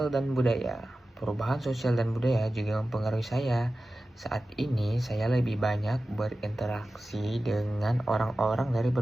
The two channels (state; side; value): normal; both; correlation 0.95